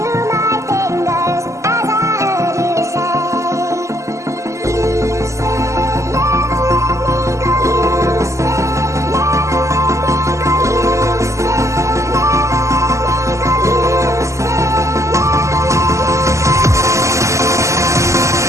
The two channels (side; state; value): left; late; 0.15 ms